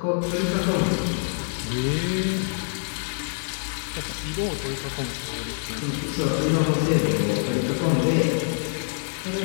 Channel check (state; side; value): silent; right; 61 dB below the other